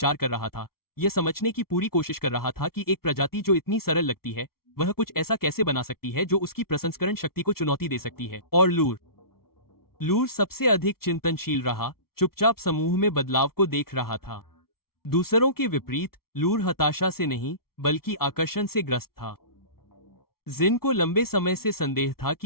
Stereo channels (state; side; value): late; right; 0.94 ms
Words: कर रहा था। यह समझने की पूरी कोशिश कर रहा था कि एक प्रजाति जो इतनी सरल लगती है, वह कुछ ऐसा कैसे बना सकती है जो उसकी प्रसंस्करण शक्ति को चुनौती दे सकती है। और लूर सबसे अधिक चिंतनशील रहा, चुपचाप समूह में बदलाव को देख रहा था। दूसरों के विपरीत लूर हताशा से नहीं, बल्कि आकर्षण से ग्रस्त था। जिन को लंबे समय से संदेह था